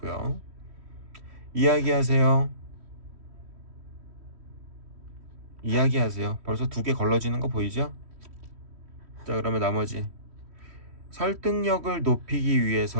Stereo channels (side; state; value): left; late; 3.1 ms